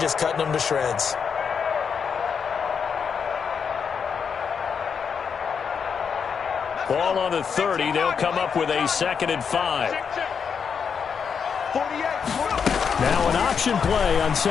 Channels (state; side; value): quieter; right; 6.5 dB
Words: cutting them to shreds. Ball on the 30. They'll come up with a 2nd and 5. Now an option play on